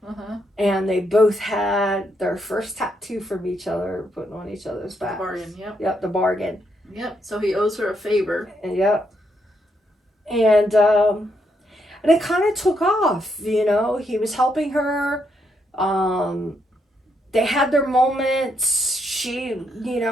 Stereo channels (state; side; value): normal; both; correlation 0.78